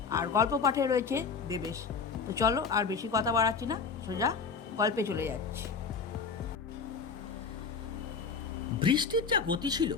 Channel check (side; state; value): right; quieter; 5.4 dB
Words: আর গল্প পাঠে রয়েছে দেবেশ। তো চলো আর বেশি কথা বাড়াচ্ছি না, সোজা গল্পে চলে যাচ্ছি। বৃষ্টির যা গতি ছিল